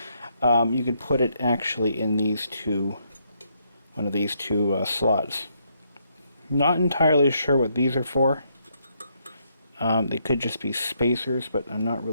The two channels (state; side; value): inverted; both; correlation -0.75